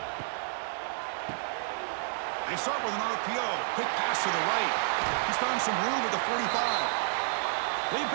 They start with an RPO. Quick pass to the right. He's found some room at the 45. They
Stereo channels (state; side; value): silent; left; 58 dB below the other